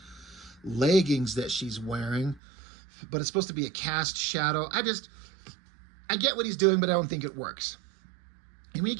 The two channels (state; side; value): drops out; left; at 2.4 s